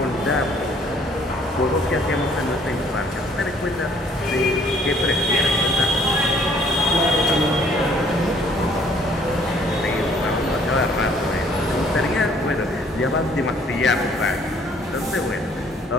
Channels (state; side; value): normal; both; correlation 0.60